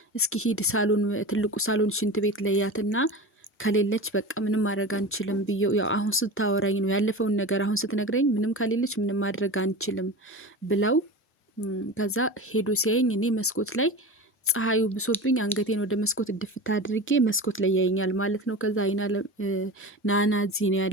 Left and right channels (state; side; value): normal; both; correlation 0.30